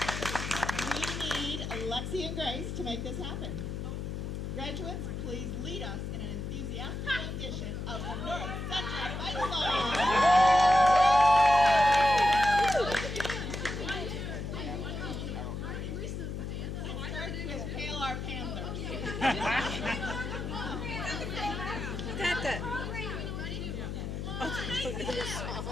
We need Alexi and Grace to make this happen. Graduates, please lead us in an enthusiastic rendition of the North Central Fight Song. Hail our Panthers.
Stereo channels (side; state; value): left; noise; hum, 5 dB below the sound